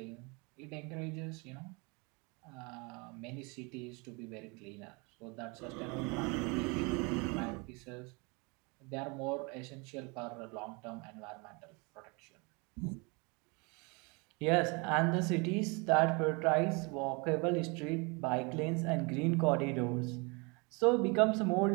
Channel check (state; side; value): quieter; left; 29.9 dB